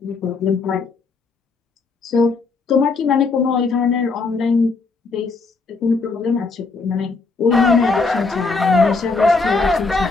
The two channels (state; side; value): quieter; right; 4.1 dB